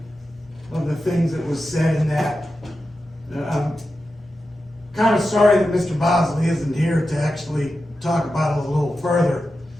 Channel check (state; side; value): normal; both; correlation 0.91